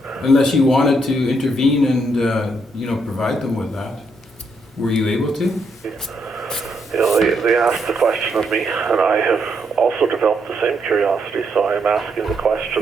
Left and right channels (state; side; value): normal; both; correlation 0.76